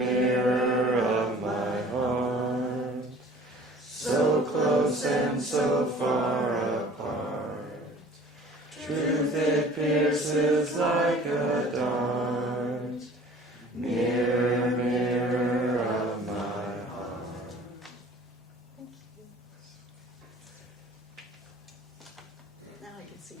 of my heart, so close and so far apart, truth it pierces like a dart. Mirror, mirror of my heart. Thank you. Now I can see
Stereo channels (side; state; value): both; normal; correlation 0.48